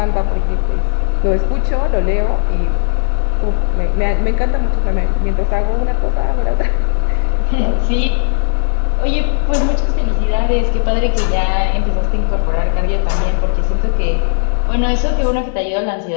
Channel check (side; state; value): right; silent; digital silence